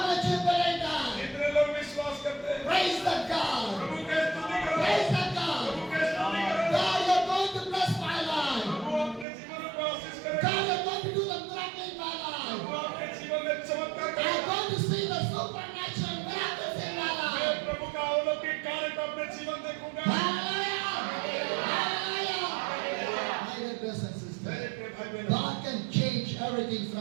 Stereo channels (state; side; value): drops out; left; at 9.2 s